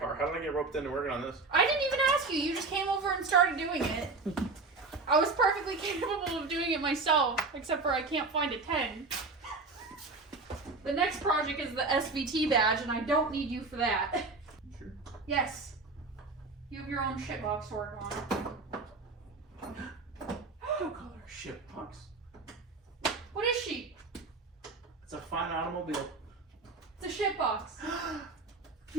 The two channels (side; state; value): left; quieter; 3.8 dB